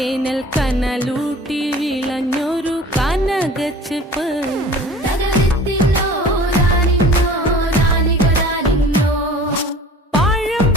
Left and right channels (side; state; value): both; normal; correlation 0.44